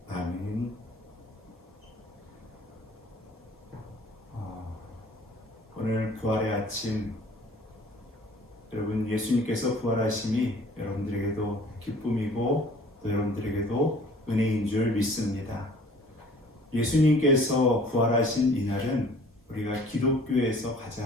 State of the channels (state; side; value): normal; both; correlation 0.51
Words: 아멘. 오늘 부활의 아침, 여러분 예수님께서 부활하심이 여러분들에게도 기쁨이고 또 여러분들에게도 은혜인 줄 믿습니다. 예수님께서 부활하신 이날은 우리가 기독교에서